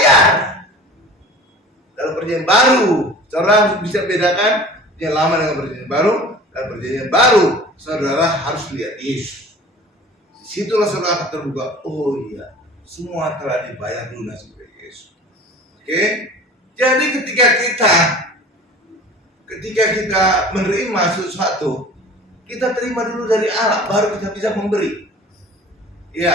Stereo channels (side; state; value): both; normal; correlation 0.42